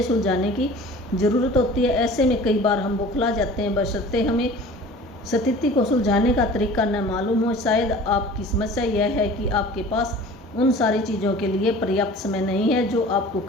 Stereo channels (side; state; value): both; normal; correlation 0.43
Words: सुलझाने की ज़रूरत होती है। ऐसे में कई बार हम बौखला जाते हैं, बशर्ते हमें स्थिति को सुलझाने का तरीका न मालूम हो। शायद आपकी समस्या यह है कि आपके पास उन सारी चीज़ों के लिए पर्याप्त समय नहीं है जो आपको